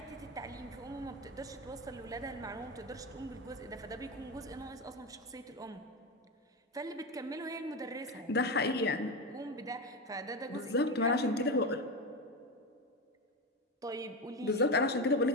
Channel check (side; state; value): both; normal; correlation 0.17